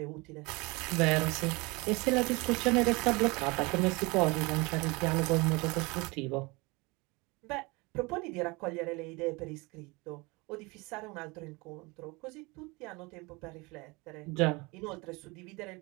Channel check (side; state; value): left; quieter; 25.6 dB